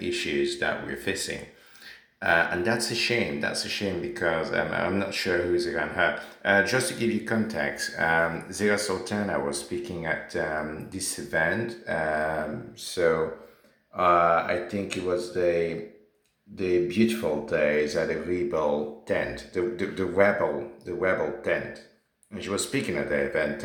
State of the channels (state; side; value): identical; both; correlation 1.00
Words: issues that we're facing. And that's a shame. That's a shame because I'm not sure who's around her. Just to give you context, Zira Sultana was speaking at this event. I think it was the beautiful days at the Rebel tent, the rebel tent, and she was speaking at the event,